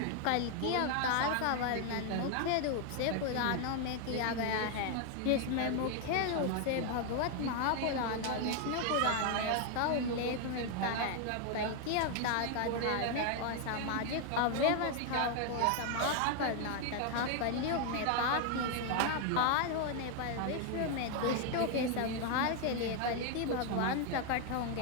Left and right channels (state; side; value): different; both; correlation 0.01